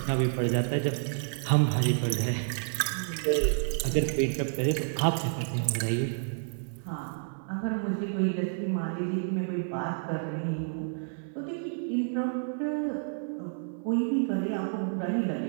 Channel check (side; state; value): left; silent; 57 dB below the other